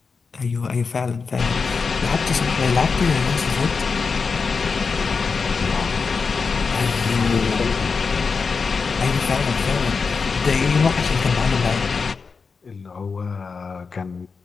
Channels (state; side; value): quieter; right; 5.0 dB